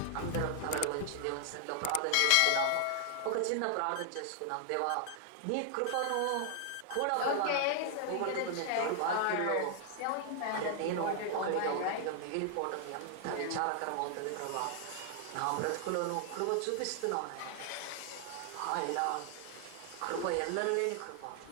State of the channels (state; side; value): different; both; correlation 0.00